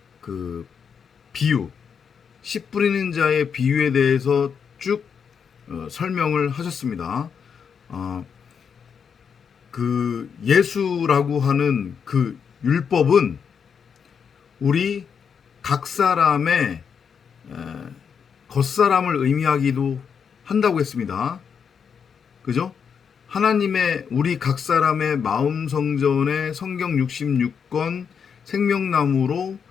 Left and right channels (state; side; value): quieter; right; 6.8 dB